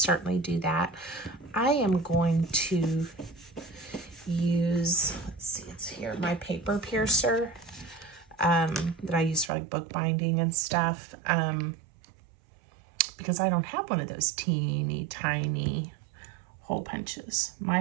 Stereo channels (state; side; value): drops out; left; at 9.5 s